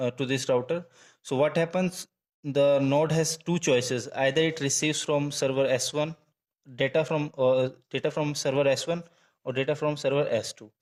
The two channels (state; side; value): identical; both; correlation 1.00